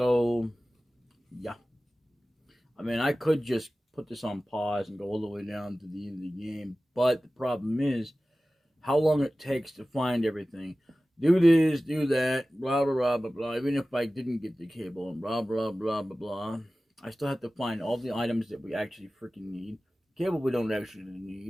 yeah. I mean, I could just put this on pause and go all the way down to the end of the game, but the problem is how long it takes to find everything. Do this, do that, blah, blah, blah, blah, blah. Even if I didn't get the cable and blah, blah, blah, blah, blah, I still have to find all the items that we actually freaking need. Cable we don't actually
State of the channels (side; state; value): both; normal; correlation 0.96